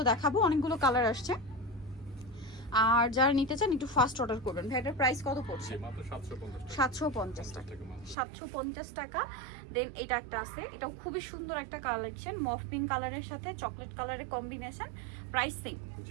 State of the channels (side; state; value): left; drops out; at 8.2 s